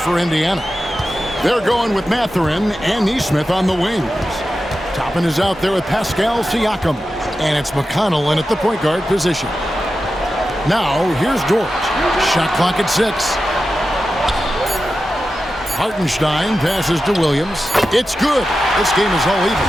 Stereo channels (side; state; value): both; normal; correlation 0.92